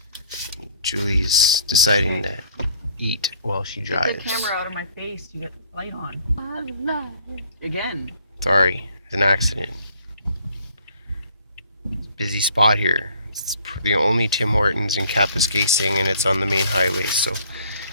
Julie's deciding to eat while she drives. Get the camera out of my face. You get the light on. Again. Sorry, it's an accident. Busy spot here. It's the only Tim Hortons in Kapuskasing, and it's on the main highway, so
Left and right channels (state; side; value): inverted; both; correlation -0.59